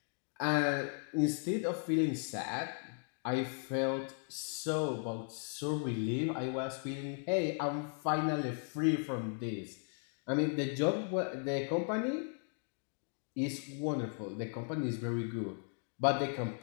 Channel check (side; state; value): right; silent; 53 dB below the other